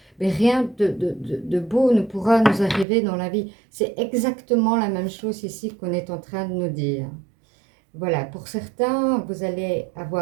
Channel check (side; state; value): left; drops out; at 2.9 s